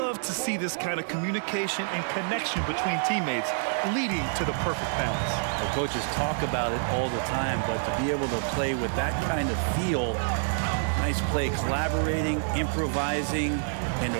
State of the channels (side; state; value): left; silent; digital silence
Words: to see this kind of communication and connection between teammates leading to the perfect pass. The coaches talk about it all the time, but to be able to play with that kind of feel, nice play, collaborating, improvising, and